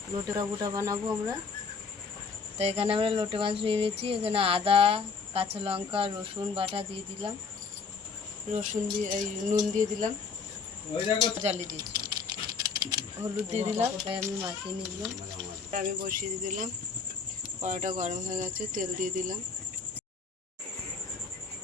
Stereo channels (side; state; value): right; quieter; 5.2 dB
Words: লোটে কাবুটা বানাবো আমরা। তো এখানে আমরা লোটে মাছ নিয়ে নিয়েছি। এখানে আদা, কাঁচা লঙ্কা, রসুন বাটা দিয়ে দিলাম। রসুন দিয়ে নুন দিয়ে দিলাম, জ্বালিয়ে দিয়েছি, হলুদ দিয়ে দিলাম। তাই আমি মাখিয়ে নিলাম। আমি বসিয়ে দিয়ে দিলাম। কড়াটা গরম হয়ে গেছে, তেল দিয়ে দিলাম।